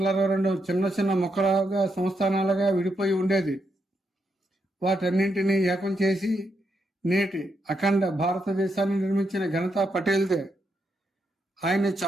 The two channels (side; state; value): both; normal; correlation 0.81